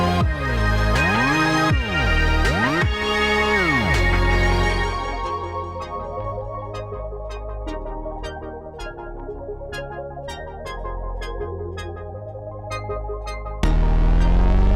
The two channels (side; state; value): both; identical; correlation 1.00